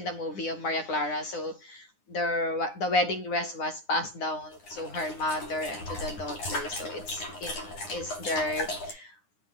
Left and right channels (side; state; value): right; late; 9.8 ms